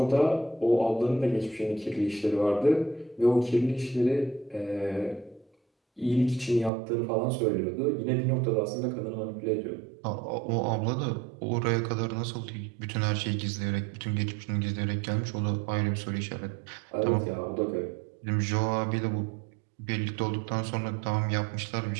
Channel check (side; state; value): left; drops out; at 6.7 s